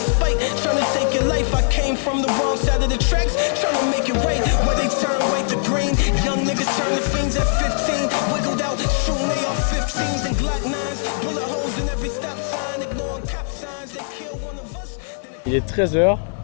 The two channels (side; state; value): right; silent; 65 dB below the other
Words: spite. Trying to take your life. I came from the wrong side of the tracks. Trying to make it right. Where they turn white to green. Young niggas turn to fiends at 15. Wiggled out, shooting they off 15s and Glock 9s. Bullet holes in every stop sign. Ignoring cop signs. They kill one of us. Il est 13h.